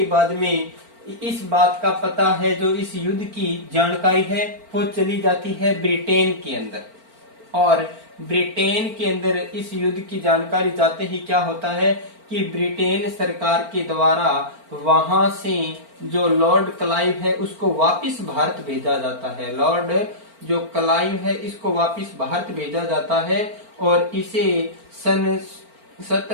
बाद में इस बात का पता है, जो इस युद्ध की जानकारी है वो चली जाती है ब्रिटेन के अंदर। और ब्रिटेन के अंदर इस युद्ध की जानकारी जाते ही क्या होता है कि ब्रिटेन सरकार के द्वारा वहां से जो लॉर्ड क्लाइव है उसको वापस भारत भेजा जाता है। लॉर्ड जो क्लाइव है इसको वापस भारत भेजा जाता है और इसे सन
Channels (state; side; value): late; left; 4.4 ms